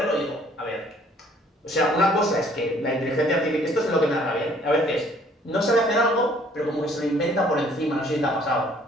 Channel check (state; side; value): normal; both; correlation 0.59